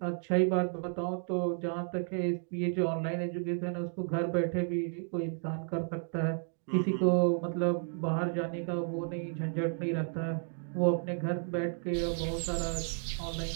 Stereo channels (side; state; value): left; silent; 56 dB below the other